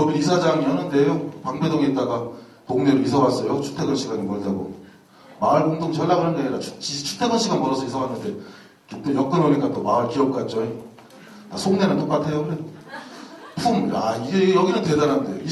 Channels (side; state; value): both; identical; correlation 1.00